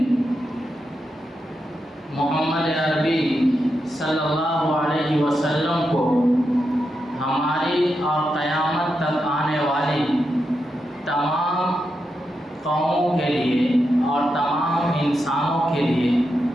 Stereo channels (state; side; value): normal; both; correlation 0.86